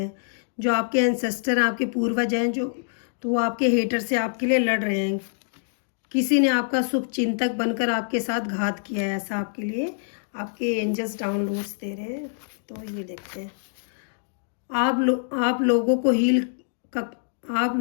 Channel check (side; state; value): right; silent; digital silence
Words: जो आपके एंसेस्टर आपके पूर्वज हैं जो, तो वो आपके हेटर से आपके लिए लड़ रहे हैं। किसी ने आपका शुभ चिंतक बनकर आपके साथ घात किया है, ऐसा आपके लिए आपके एंजल्स डाउनलोड्स दे रहे हैं। तो ये देखते हैं। आप लोगों